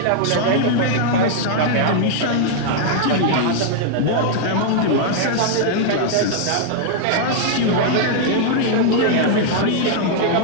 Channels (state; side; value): different; both; correlation 0.00